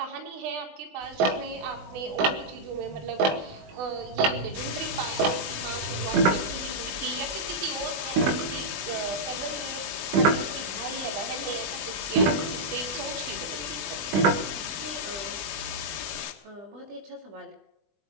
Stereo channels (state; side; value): late; left; 20 ms